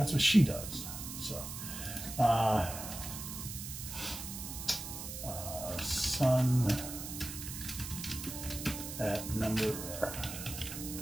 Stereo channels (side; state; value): right; noise; hiss, 8 dB below the sound